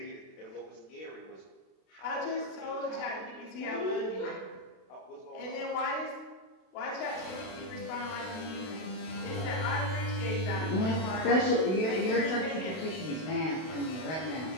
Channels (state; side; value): late; right; 32 ms